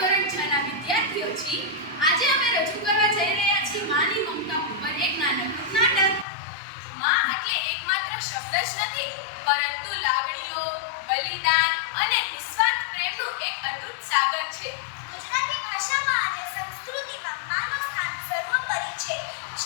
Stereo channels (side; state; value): right; drops out; at 6.2 s